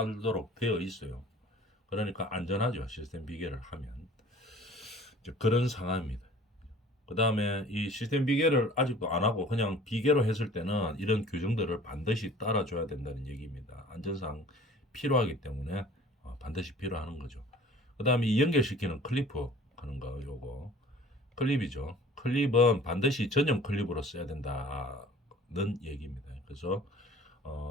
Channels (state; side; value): normal; both; correlation 0.48